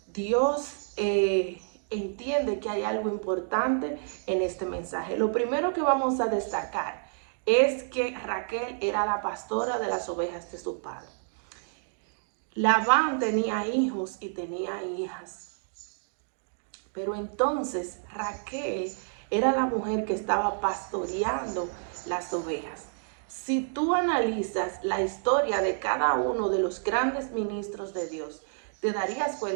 Dios entiende que hay algo importante en este mensaje. Lo primero que vamos a destacar es que Raquel era la pastora de las ovejas de su padre. Labán tenía hijos y tenía hijas, pero entonces Raquel era la mujer que estaba pastoreando las ovejas. Si tú analizas la historia de cada uno de los grandes ministros de Dios, te darías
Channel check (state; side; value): silent; left; digital silence